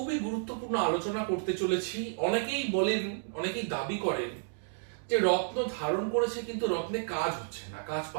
গুরুত্বপূর্ণ আলোচনা করতে চলেছি। অনেকেই বলেন, অনেকেই দাবি করেন যে রত্ন ধারণ করেছে কিন্তু রত্নে কাজ হচ্ছে না, কাজ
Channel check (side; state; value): left; silent; digital silence